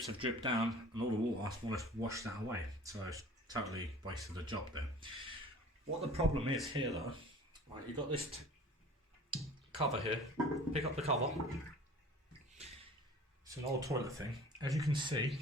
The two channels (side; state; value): both; normal; correlation 0.45